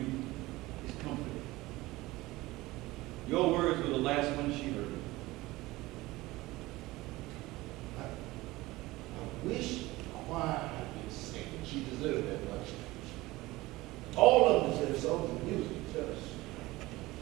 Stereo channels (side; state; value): left; quieter; 19.5 dB